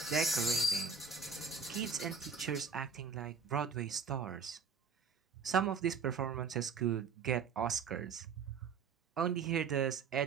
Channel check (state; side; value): quieter; left; 5.4 dB